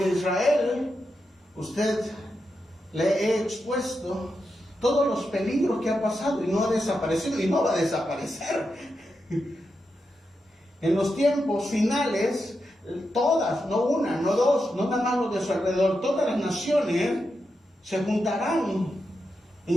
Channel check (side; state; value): both; normal; correlation 0.87